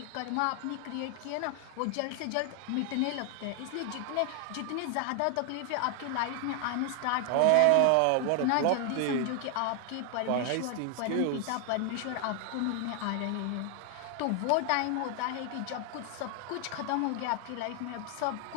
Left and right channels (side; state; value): both; different; correlation 0.00